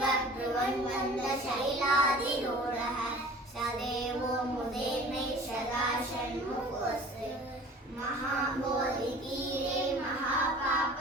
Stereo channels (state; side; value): normal; both; correlation 0.45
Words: ब्रुवन्मन्दशैलादिरूढः सदेवो मुदेर्मे सदा षण्मुखोऽस्ति महाबोधितीरे